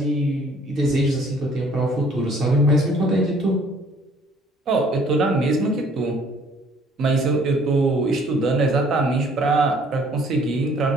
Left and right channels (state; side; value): normal; both; correlation 0.58